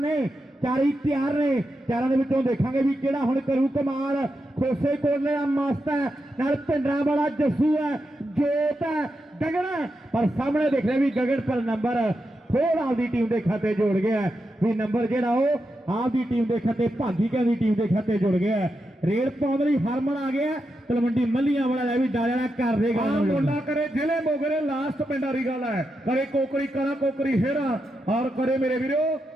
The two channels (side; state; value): both; normal; correlation 0.86